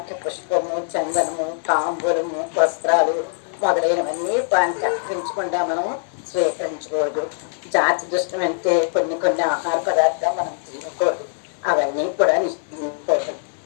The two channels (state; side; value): silent; right; digital silence